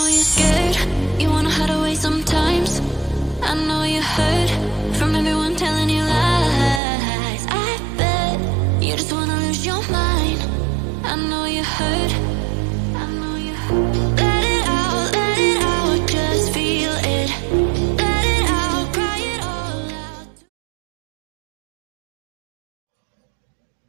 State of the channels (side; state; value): left; drops out; at 6.8 s